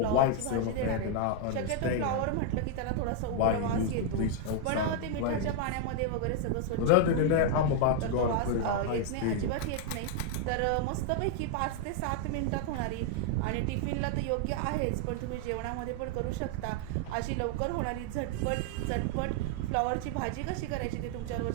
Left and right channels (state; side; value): different; both; correlation 0.00